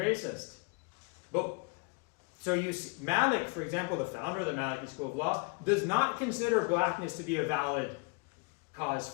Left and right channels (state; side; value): quieter; right; 31.4 dB